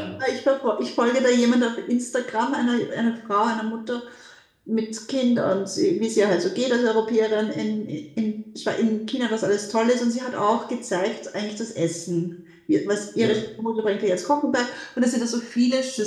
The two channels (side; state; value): both; identical; correlation 1.00